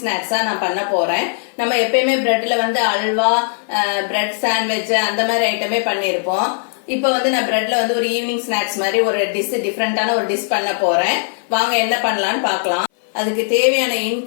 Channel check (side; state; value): right; silent; 58 dB below the other